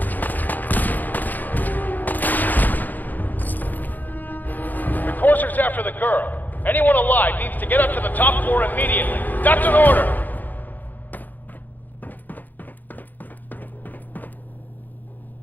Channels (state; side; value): late; right; 0.085 ms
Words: The courser's after the girl. Anyone alive needs to get up to the top floor immediately. That's an order!